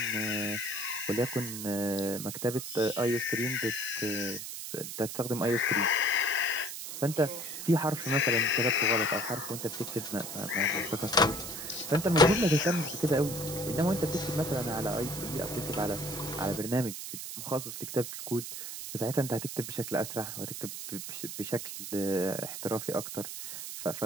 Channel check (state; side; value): noise; right; hiss, 7 dB below the sound